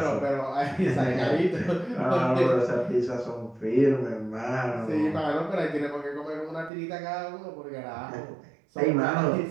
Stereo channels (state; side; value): drops out; left; at 6.7 s